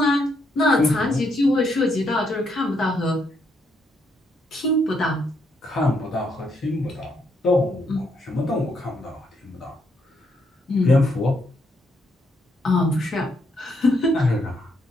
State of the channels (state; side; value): normal; both; correlation 0.76